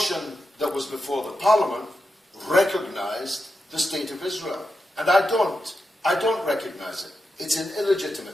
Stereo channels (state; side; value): normal; both; correlation 0.88